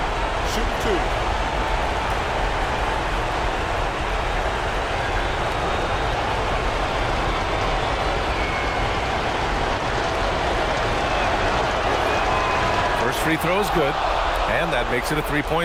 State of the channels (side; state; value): both; identical; correlation 1.00